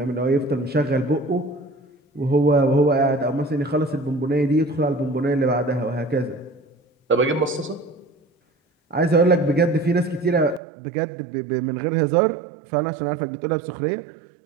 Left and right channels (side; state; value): left; drops out; at 10.6 s